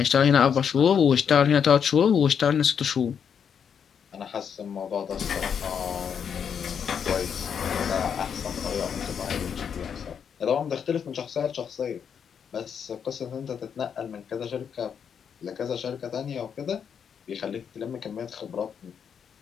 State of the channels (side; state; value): right; quieter; 7.4 dB